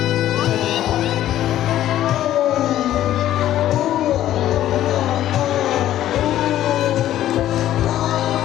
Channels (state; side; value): quieter; right; 12.8 dB